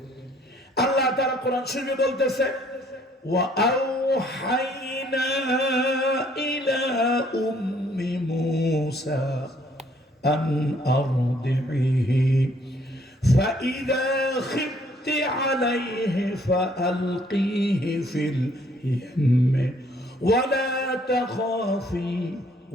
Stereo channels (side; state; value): both; normal; correlation 0.63